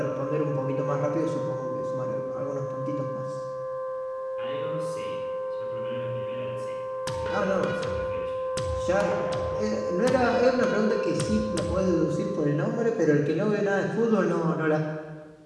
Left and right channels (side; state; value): both; identical; correlation 1.00